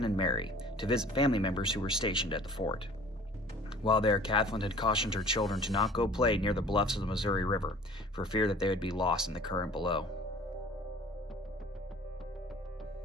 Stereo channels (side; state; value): both; normal; correlation 0.48